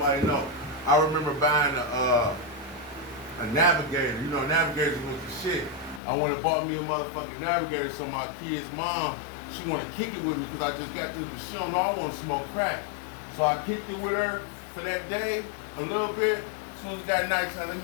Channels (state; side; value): drops out; right; at 6.0 s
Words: know. I remember buying a Navigator. You know, Navigators was the shit. I went and bought me a motherfucking Navigator, so my kid's mom, she want to kick it with me because I just got this, but she don't know I want to smoke crack. So I kicked it with her for that day, a little bit. As soon as it got nighttime, let